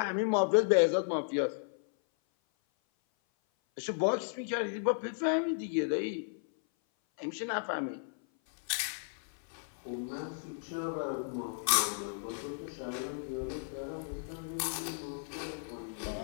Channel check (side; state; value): right; silent; 55 dB below the other